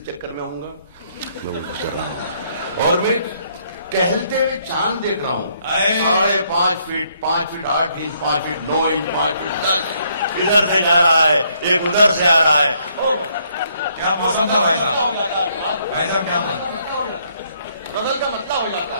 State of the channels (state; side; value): inverted; both; correlation -0.69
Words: چکر میں ہوں گا میں وہ گزر رہا ہوں اور میں ٹہلتے ہوئے چاند دیکھ رہا ہوں. 5.5 foot 5 foot 8 inch 5 foot 9 inch 5 foot 10 ادھر سے جا رہا ہے ایک ادھر سے آ رہا ہے. کیا موسم تھا بھائی صاحب کیا بدل کا مطلب ہو جاتا